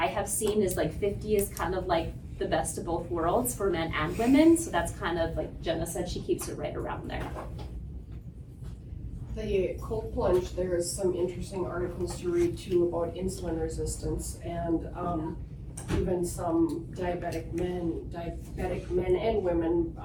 have seen is like 50 is kind of like the best of both worlds for men and women. So that's kind of like Jenna said, she keeps it right around there. The cold plunge, there is some interesting articles to read too about insulin resistance and even some diabetic men and women.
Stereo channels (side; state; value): both; identical; correlation 1.00